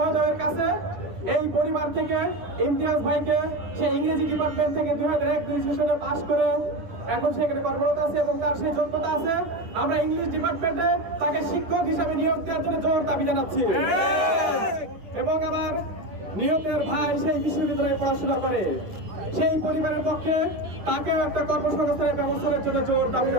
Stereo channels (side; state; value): left; late; 10 ms